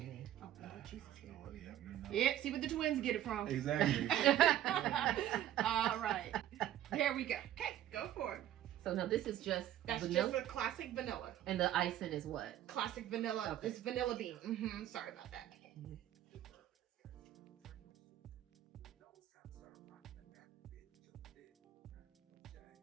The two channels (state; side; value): quieter; left; 12.4 dB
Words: Oh, Jesus. Oh, yeah, you know. Yeah, see where the twins get it from. Exactly. All right, there we go. Okay, go for it. So now this is just That's vanilla, just a classic vanilla. and the icing is what? Classic vanilla. Okay. It's vanilla bean. Sorry about that.